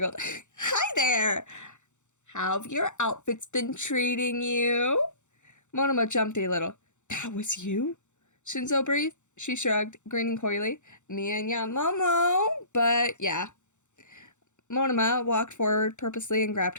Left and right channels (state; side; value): late; right; 0.84 ms